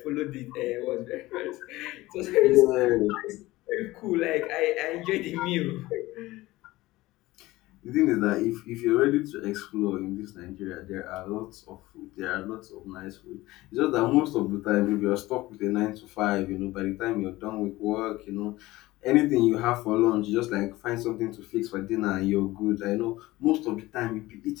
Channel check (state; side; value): quieter; right; 18.6 dB